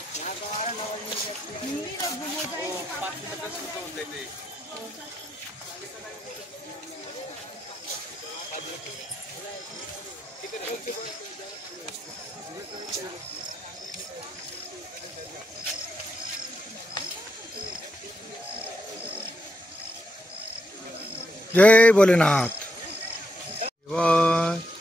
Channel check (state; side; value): normal; both; correlation 0.81